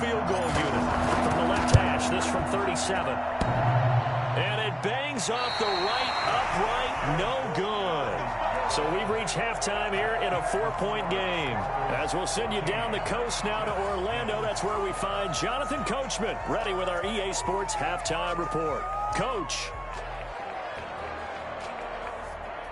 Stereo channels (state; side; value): identical; both; correlation 1.00